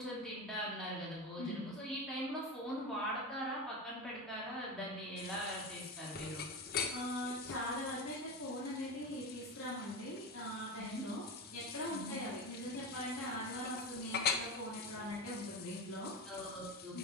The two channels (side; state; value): both; normal; correlation 0.22